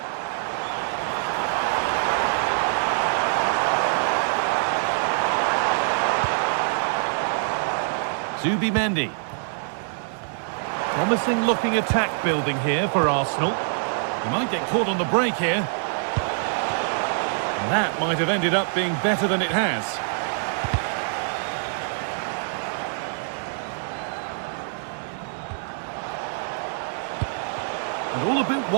Zubimendi. Promising looking attack building here for Arsenal. He might get caught on the break here. And that might have ended up being better than it has. And all a bit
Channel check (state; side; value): silent; left; digital silence